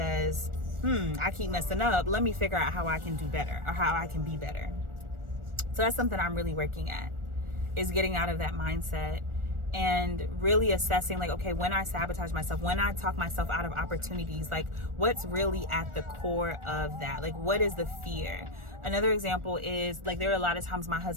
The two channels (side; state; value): left; late; 1.4 ms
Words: I keep messing up. Let me figure out how I can do better, or how I can be better. So that's something I'm really working at, is getting out of that mindset and really assessing like, okay, when I sabotage myself, when I talk myself out of opportunities, like what's really at the core of that? Like, what is the fear? Another example is like, there are a lot of times my